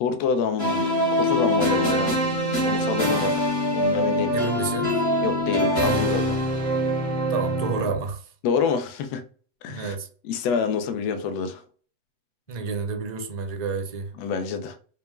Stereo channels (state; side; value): late; right; 7.9 ms